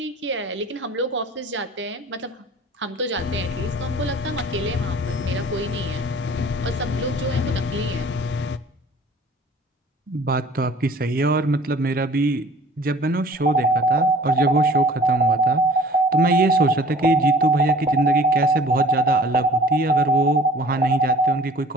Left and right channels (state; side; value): normal; both; correlation 0.49